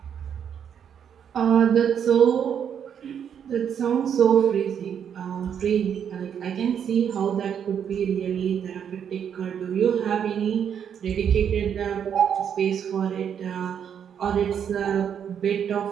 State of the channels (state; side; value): quieter; left; 8.3 dB